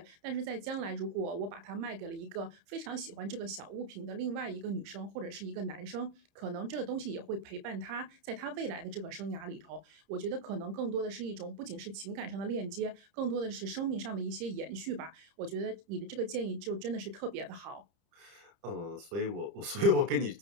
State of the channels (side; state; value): left; late; 30 ms